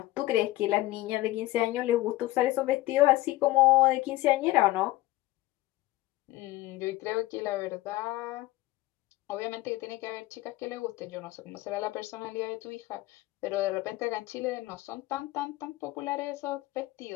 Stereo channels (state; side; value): quieter; right; 17.8 dB